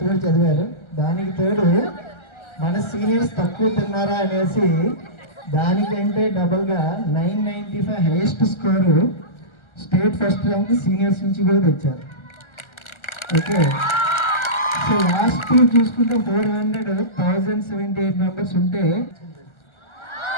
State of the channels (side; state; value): right; late; 1.3 ms